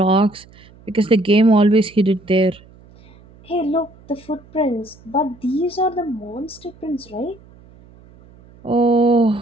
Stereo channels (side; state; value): right; noise; hum, 25 dB below the sound